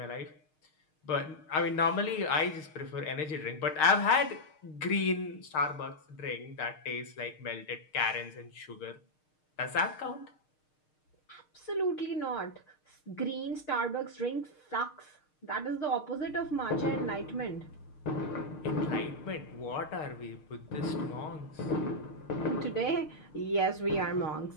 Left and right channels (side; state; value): right; late; 6.5 ms